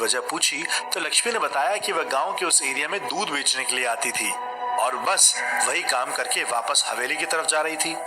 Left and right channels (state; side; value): identical; both; correlation 1.00